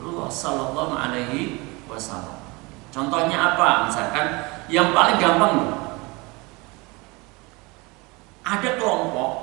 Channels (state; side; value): quieter; left; 25.6 dB